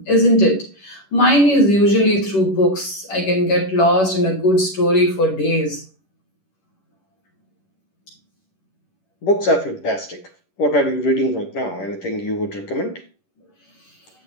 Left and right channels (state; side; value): late; right; 11 ms